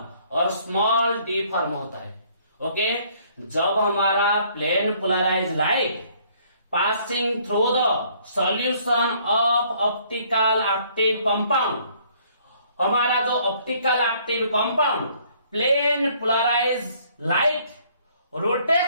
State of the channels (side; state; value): both; inverted; correlation -0.62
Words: और स्मॉल डी फॉर्म होता है। ओके, जब हमारा plane polarise light passing through the solution of optical active compound, हमारा जो optical active compound plane polarise light